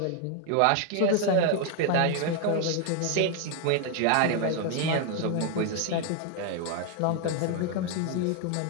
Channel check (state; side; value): different; both; correlation 0.01